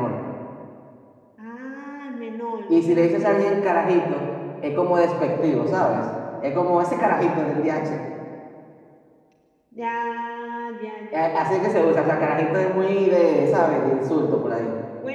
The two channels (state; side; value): identical; both; correlation 1.00